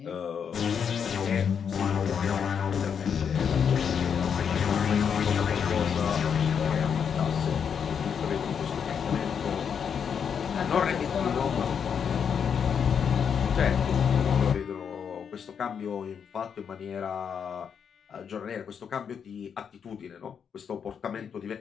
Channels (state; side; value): quieter; right; 7.2 dB